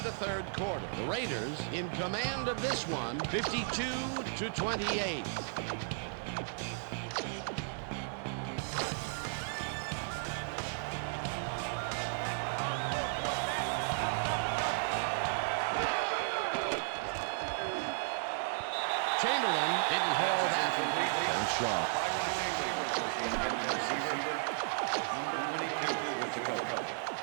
the 3rd quarter. The Raiders in command of this one, 52-28. Chamberlain didn't haul that completely. Aaron Shaw.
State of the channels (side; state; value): left; silent; digital silence